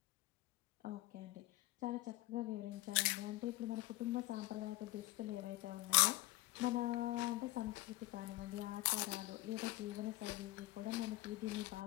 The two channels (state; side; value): quieter; right; 18.8 dB